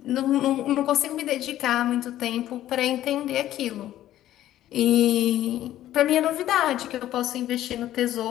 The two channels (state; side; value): quieter; right; 13.2 dB